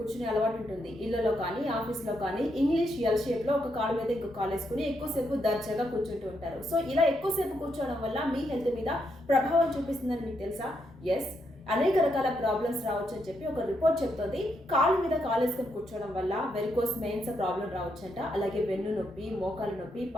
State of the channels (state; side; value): normal; both; correlation 0.79